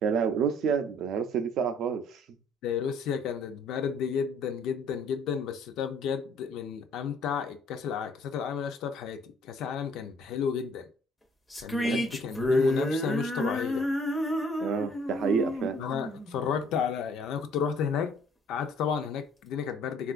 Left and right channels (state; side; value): normal; both; correlation 0.59